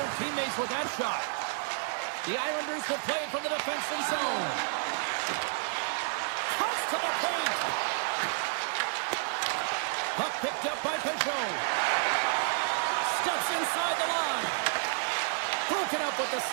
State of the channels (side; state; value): left; silent; 57 dB below the other